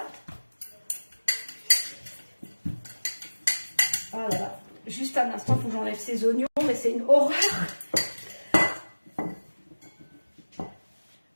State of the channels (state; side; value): inverted; both; correlation -1.00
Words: Ah là là, juste un instant, il faut que j'enlève ces oignons, mais c'est une horreur.